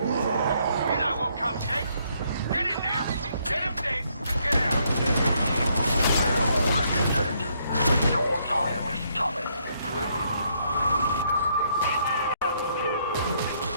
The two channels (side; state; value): both; inverted; correlation -0.71